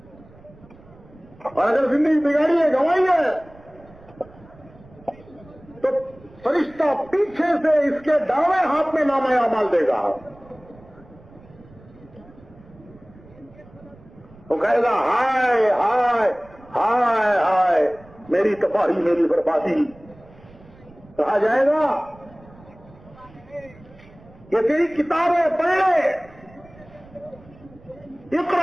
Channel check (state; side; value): noise; right; rumble, 24 dB below the sound